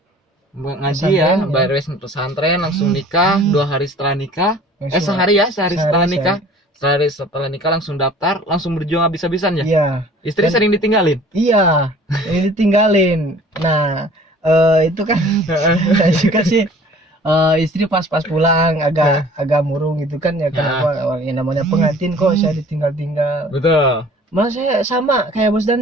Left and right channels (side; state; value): both; normal; correlation 0.49